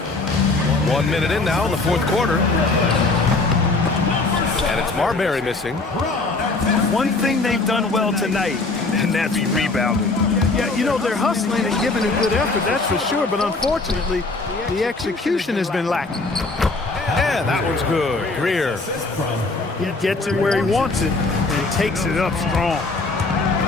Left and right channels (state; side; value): quieter; right; 3.5 dB